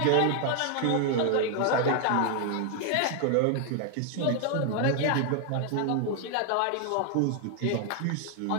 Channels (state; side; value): different; both; correlation 0.00